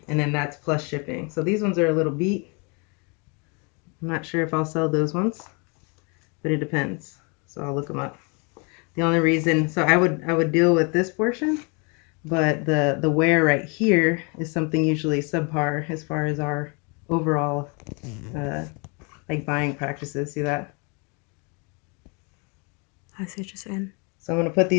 and then that's plus shipping. So these ones are a little beat. I'm not sure if I'll sell those ones, but it depends. So I'll look them up. The only reason, so I would deal with this portion, but the wear right here is something usually subpar as far as our overall like buying practices. See that? I see what you're saying. So I'm going to put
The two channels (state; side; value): quieter; right; 32.9 dB